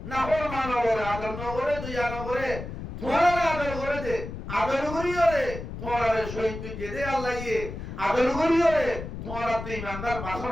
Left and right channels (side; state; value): left; noise; rumble, 8 dB below the sound